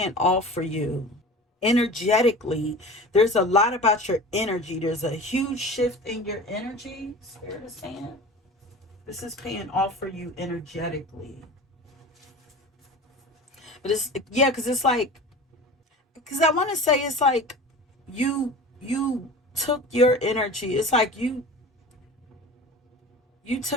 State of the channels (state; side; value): normal; both; correlation 0.37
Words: off for you energetically. There's a lot about your energy. There's a huge shift in your energy. Spirit is saying this is paying off for you energetically. But it's, yeah, because it's like, because I want to say it's like you took your energy. It's like you